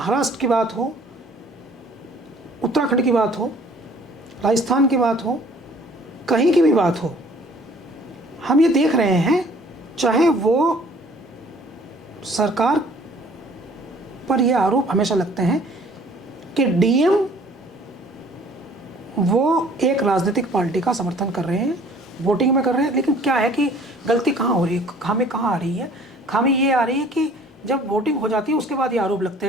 की बात हो, उत्तराखंड की बात हो, राजस्थान की बात हो, कहीं की भी बात हो, हम ये देख रहे हैं, चाहे वो सरकार पर ये आरोप हमेशा लगते हैं कि डीएम वो एक राजनीतिक पार्टी का समर्थन कर रहे हैं, वोटिंग में कर रहे हैं। लेकिन क्या है कि गलती कहाँ हो रही है, खामी कहाँ आ रही है? खामी ये आ रही है कि जब वोटिंग हो जाती है उसके बाद ये आरोप लगते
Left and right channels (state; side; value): normal; both; correlation 0.54